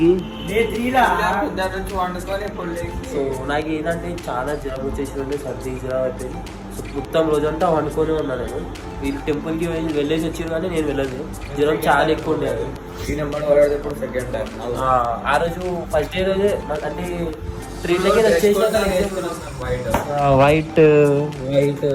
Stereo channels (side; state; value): both; identical; correlation 1.00